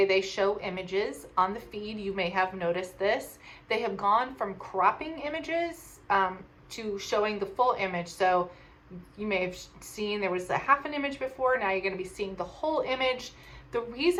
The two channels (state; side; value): identical; both; correlation 1.00